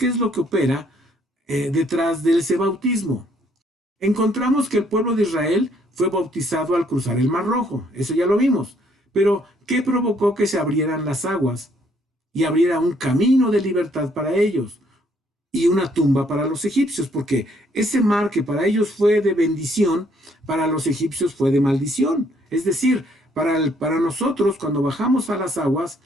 es lo que opera detrás de ese bautismo. Encontramos que el pueblo de Israel fue bautizado al cruzar el Mar Rojo. Eso ya lo vimos. Pero, ¿qué provocó que se abrieran las aguas y abriera un camino de libertad para ellos y una tumba para los egipcios? Porque ese mar que para ellos fue de bendición, para los egipcios fue de maldición. Es decir, para nosotros, cuando bajamos a las aguas,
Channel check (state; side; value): normal; both; correlation 0.67